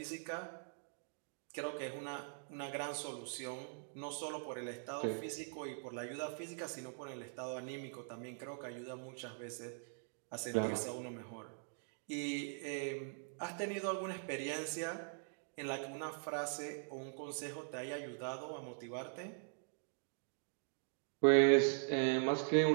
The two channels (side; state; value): left; silent; digital silence